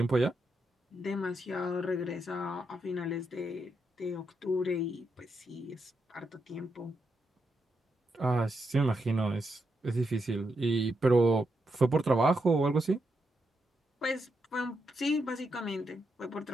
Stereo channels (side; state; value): both; normal; correlation 0.83